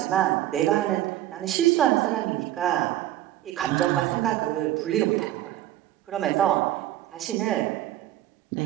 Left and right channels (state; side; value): quieter; left; 13.9 dB